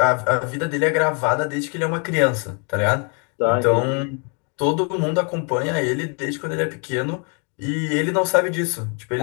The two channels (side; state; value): right; quieter; 37.8 dB